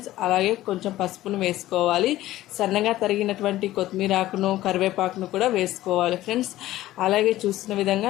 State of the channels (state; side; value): quieter; right; 15.3 dB